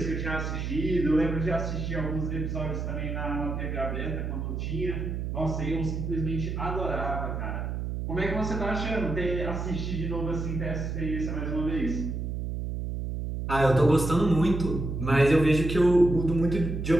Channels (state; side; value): noise; right; hum, 3 dB below the sound